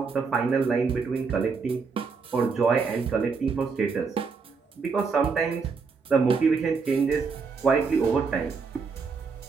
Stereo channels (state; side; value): quieter; left; 5.1 dB